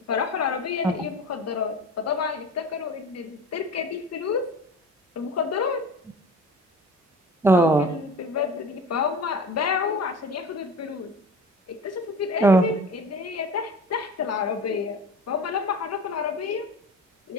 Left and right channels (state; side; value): normal; both; correlation 0.36